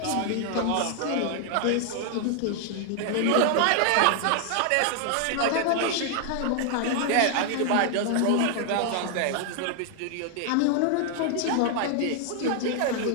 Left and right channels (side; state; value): both; different; correlation 0.00